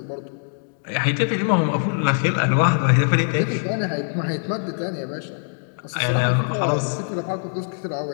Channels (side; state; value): right; silent; digital silence